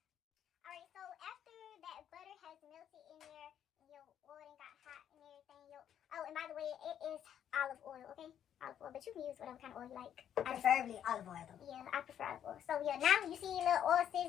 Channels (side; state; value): right; quieter; 9.7 dB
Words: Alright, so after has melted in there and your oil and got hot and everything. Oh, and by the way, it is olive oil, okay? Olive oil, but you can use whatever kind of oil you like. Preferably olive oil though. Yeah, I prefer olive oil. So yeah, now you see your little oil